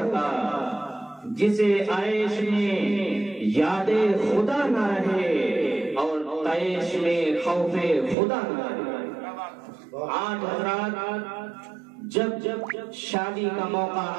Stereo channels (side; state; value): left; drops out; at 8.2 s